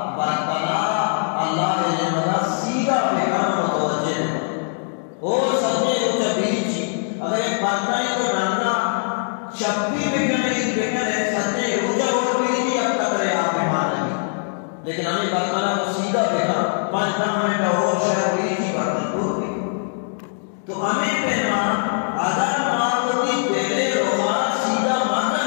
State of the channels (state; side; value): silent; right; 64 dB below the other